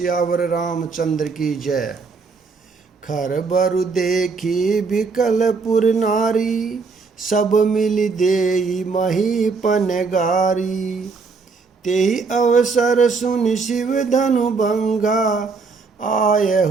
रामचंद्र की जय। खर बरु देखी बिकलपुर नारी, सब मिल देई महीपन गारी। तेहि अवसर सुन शिव धनु भंगा,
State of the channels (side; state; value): left; quieter; 4.6 dB